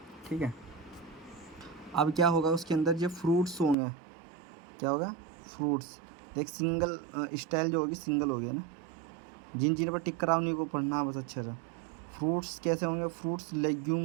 ठीक है। अब क्या होगा उसके अंदर, जो फ्रूट्स होंगे, क्या होगा, फ्रूट्स। देख सिंगल स्टाइल जो होगी सिंगल हो गया ना, जिन जिन पर टिक करा उन्हीं को पढ़ना बस अच्छे से। फ्रूट्स कैसे होंगे, फ्रूट्स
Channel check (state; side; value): drops out; left; at 3.8 s